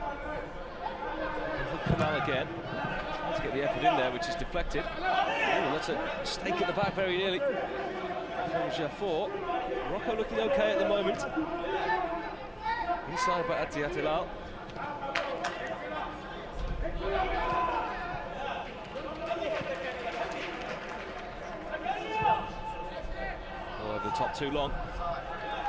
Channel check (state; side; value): identical; both; correlation 1.00